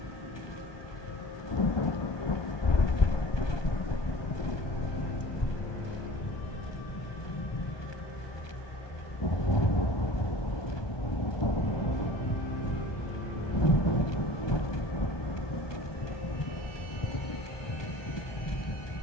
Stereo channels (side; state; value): right; late; 1.2 ms